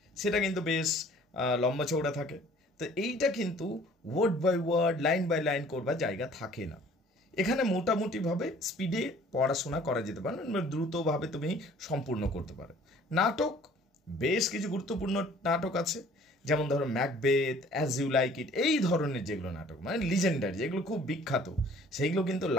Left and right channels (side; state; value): both; normal; correlation 0.53